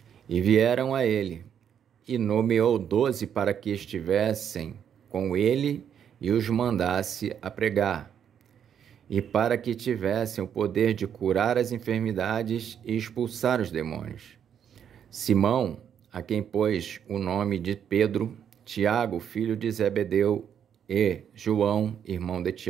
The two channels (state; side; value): quieter; left; 8.6 dB